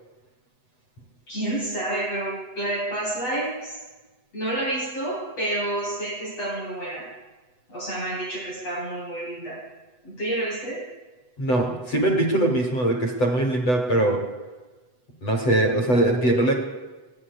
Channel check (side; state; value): right; late; 8.0 ms